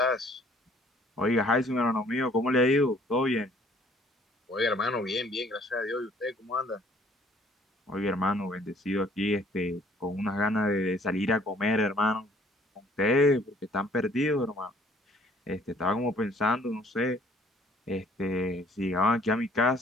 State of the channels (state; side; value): normal; both; correlation 0.59